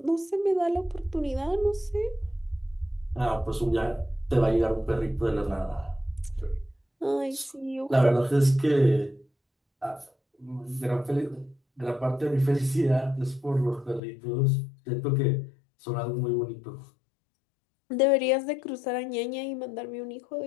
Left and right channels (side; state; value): right; drops out; at 14.0 s